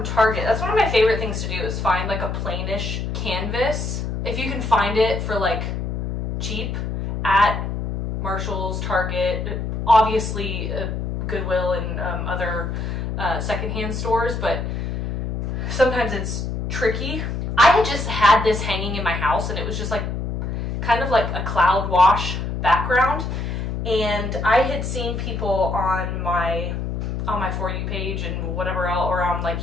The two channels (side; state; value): left; noise; hum, 3 dB below the sound